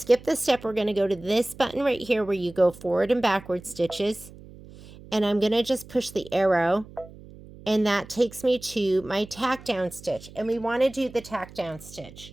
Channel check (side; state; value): right; noise; hum, 19 dB below the sound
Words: the step, we're going to go to this button right here where you go forward and backward stitches. And I'm going to just push the arrow. And that takes me to my tack down stitch. And we want to do the tack down